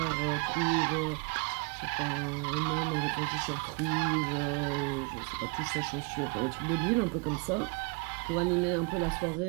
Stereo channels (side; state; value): left; quieter; 31.8 dB